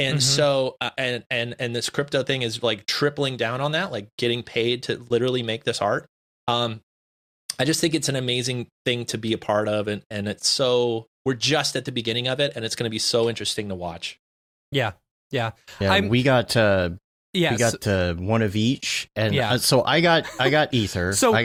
so, and this crypto thing is like tripling down on that, like getting paid to literally make this art. I just think it's an amazing thing to be a part of. And it's so, we're just at the beginning of it and it's going to be so interesting to watch. Yeah. We got one of each, and so I got Ether.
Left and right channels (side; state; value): both; identical; correlation 1.00